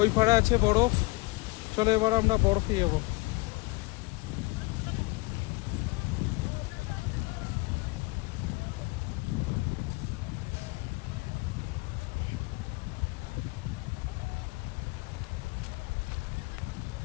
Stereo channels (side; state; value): right; quieter; 24.9 dB